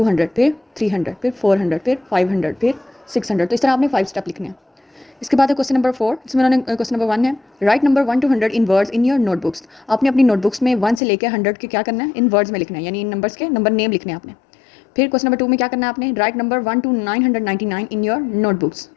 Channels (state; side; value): drops out; right; at 11.0 s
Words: फिर 300, फिर 400, फिर 500, फिर 600। तो इस तरह आपने 5 स्टेप लिखने हैं। इसके बाद है क्वेश्चन नंबर 4, जिसमें उन्होंने क्वेश्चन नंबर 1 है, right number 1 to 100 in words in your notebooks. आपने अपनी नोटबुक्स में 1 से लेकर 100 के क्या करना है? इन वर्ड्स में लिखना है, यानी इन नंबर्स के नंबर नेम लिखने हैं आपने। फिर क्वेश्चन नंबर 2 में क्या करना है आपने? Right number 1 to 999 in your notebooks.